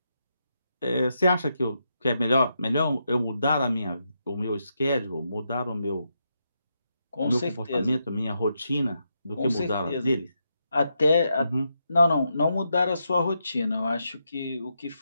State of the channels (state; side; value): inverted; both; correlation -0.83